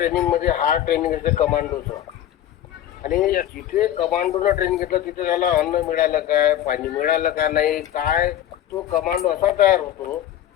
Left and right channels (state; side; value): quieter; right; 11.7 dB